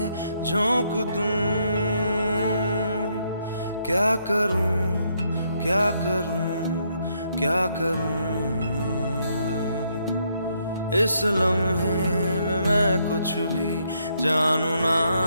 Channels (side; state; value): both; inverted; correlation -0.74